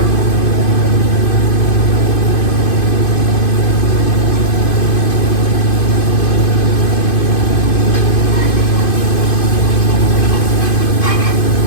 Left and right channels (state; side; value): late; right; 2.5 ms